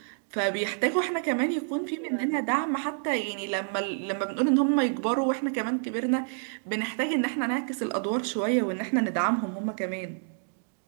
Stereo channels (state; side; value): silent; left; digital silence